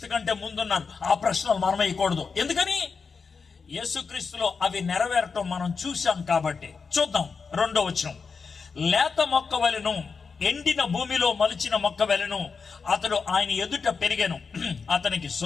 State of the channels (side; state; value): right; quieter; 5.2 dB